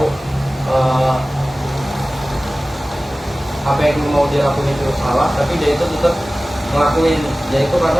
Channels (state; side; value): normal; both; correlation 0.97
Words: apa yang mau dia lakuin itu salah, tapi dia itu tetap ngelakuin, yaitu